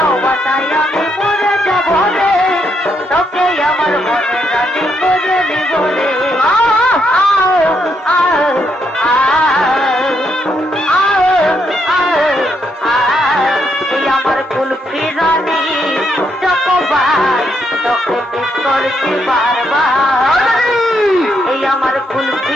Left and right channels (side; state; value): both; normal; correlation 0.77